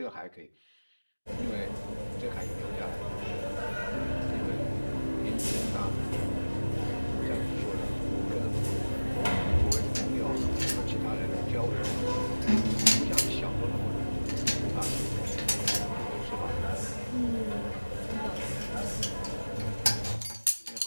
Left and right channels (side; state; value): both; inverted; correlation -1.00